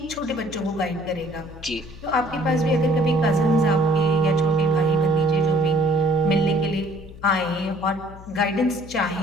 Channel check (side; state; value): left; noise; hum, 17 dB below the sound